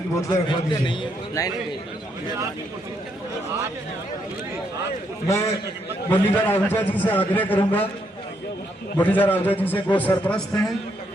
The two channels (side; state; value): both; normal; correlation 0.76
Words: की बोतलें रखवा दीजिए। मैं मुरलीधर आहूजा जी से आग्रह करूंगा, मुरलीधर आहूजा जी से वो सरपरस्त हैं,